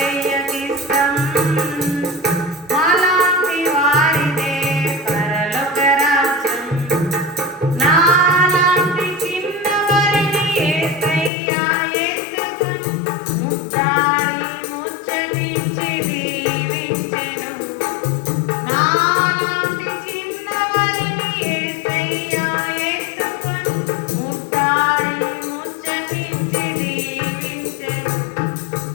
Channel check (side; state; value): right; drops out; at 11.3 s